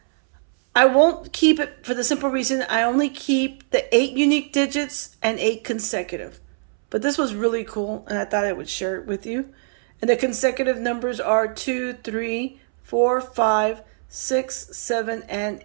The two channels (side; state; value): left; silent; 64 dB below the other